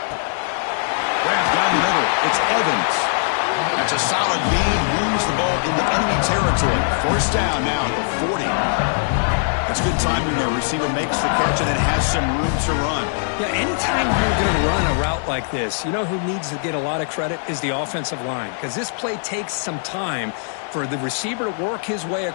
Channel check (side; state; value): right; silent; digital silence